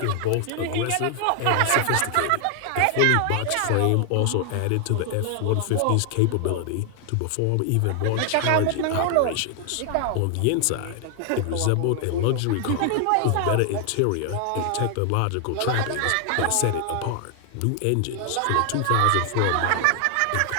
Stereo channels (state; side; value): different; both; correlation 0.00